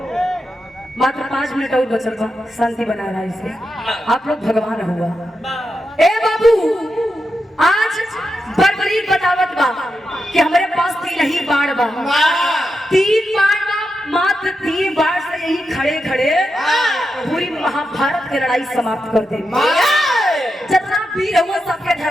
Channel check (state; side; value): normal; both; correlation 0.88